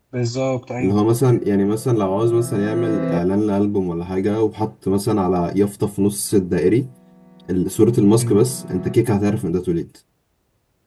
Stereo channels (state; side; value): identical; both; correlation 1.00